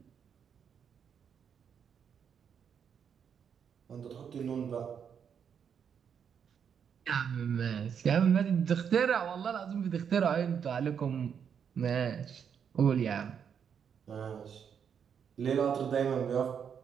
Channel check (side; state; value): left; quieter; 7.5 dB